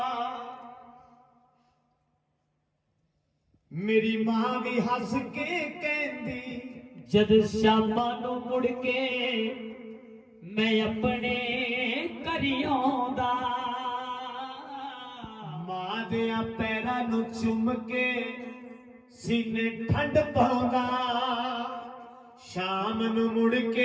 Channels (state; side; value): identical; both; correlation 1.00